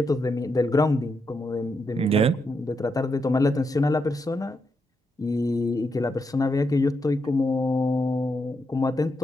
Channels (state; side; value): normal; both; correlation 0.83